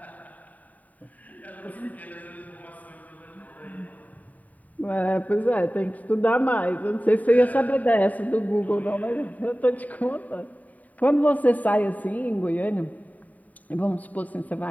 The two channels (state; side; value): late; right; 0.073 ms